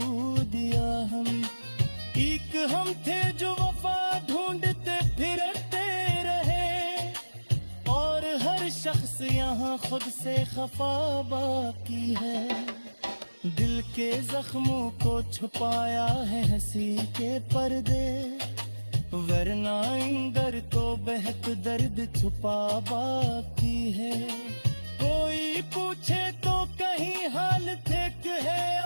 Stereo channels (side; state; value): both; inverted; correlation -1.00